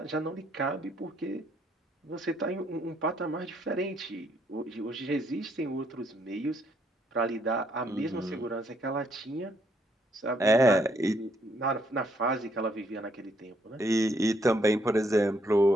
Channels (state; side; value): normal; both; correlation 0.71